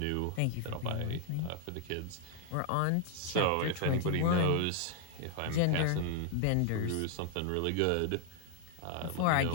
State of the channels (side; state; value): both; different; correlation 0.00